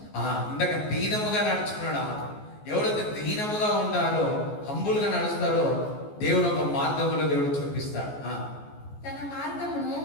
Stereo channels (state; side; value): late; right; 14 ms